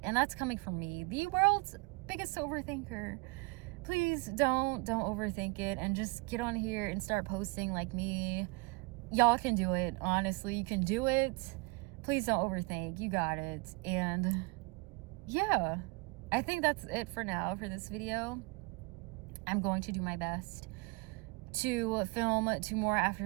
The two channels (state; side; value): quieter; left; 27.3 dB